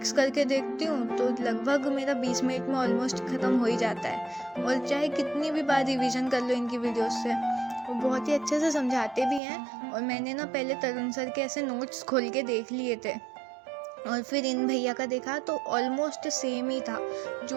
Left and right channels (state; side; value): drops out; left; at 9.4 s